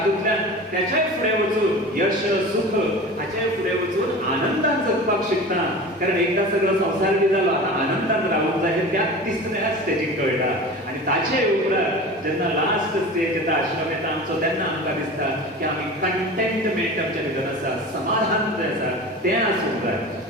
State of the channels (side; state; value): both; normal; correlation 0.34